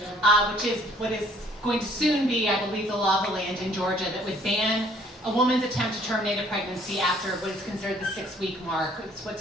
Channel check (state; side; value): normal; both; correlation 0.59